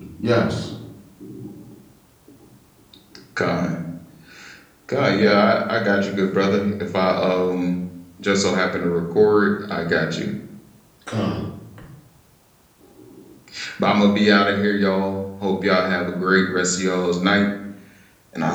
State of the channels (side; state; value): both; identical; correlation 1.00